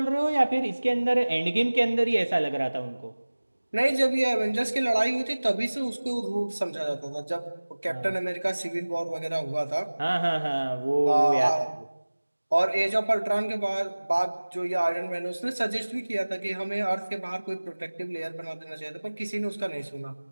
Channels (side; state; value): both; inverted; correlation -1.00